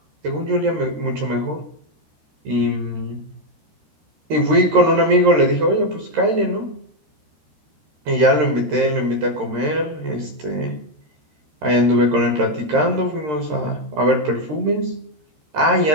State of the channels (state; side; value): late; left; 13 ms